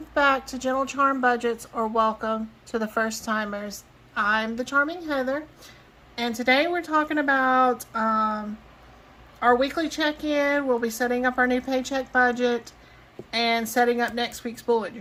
back to Gentle Charm Budgets, or welcome to the first timers. I'm the Charming Heather, and today we're talking about our weekly check-in. We'll be setting up our new paycheck budget and setting up next week's bullet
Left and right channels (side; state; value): both; identical; correlation 1.00